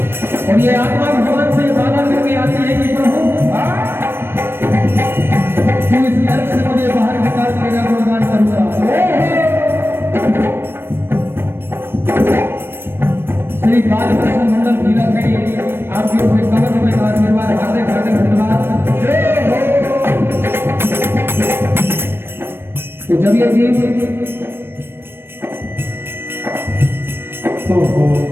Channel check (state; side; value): late; left; 0.11 ms